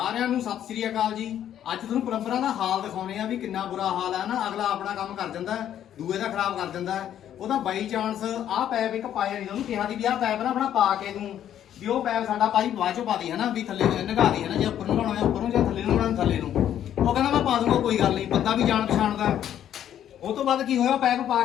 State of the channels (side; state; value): right; quieter; 10.6 dB